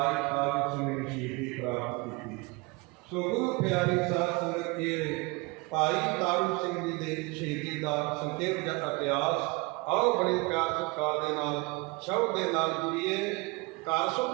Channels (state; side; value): quieter; left; 26.1 dB